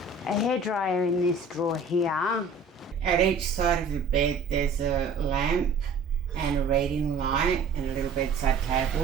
A hairdryer in this drawer here. At each side of the bed there's a lamp and a reading light and a little bedside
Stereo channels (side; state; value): left; quieter; 4.1 dB